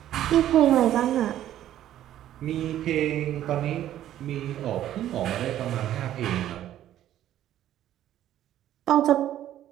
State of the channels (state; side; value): quieter; left; 12.2 dB